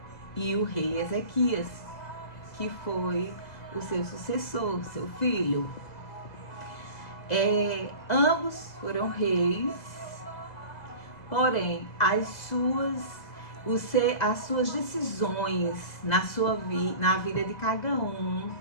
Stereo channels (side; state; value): right; late; 2.0 ms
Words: e o rei Ezequias, que foi o seu sucessor, o seu filho. Ambos foram reis, porém as suas decisões na vida de cada um